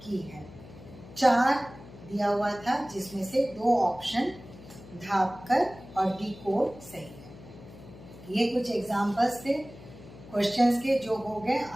की है? 4 दिया हुआ था जिसमें से 2 ऑप्शन धापकर और डिकोड सही है। ये कुछ एग्जाम्पल्स थे क्वेश्चंस के जो हो गए।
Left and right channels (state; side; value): noise; left; hum, 18 dB below the sound